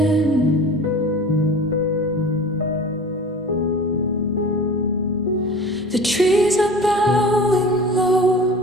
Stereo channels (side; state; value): both; normal; correlation 0.39